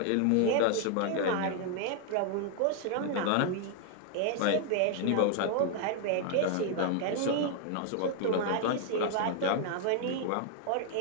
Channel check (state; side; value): different; both; correlation 0.00